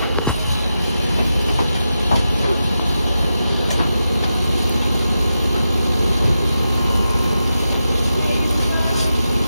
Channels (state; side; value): inverted; both; correlation -0.89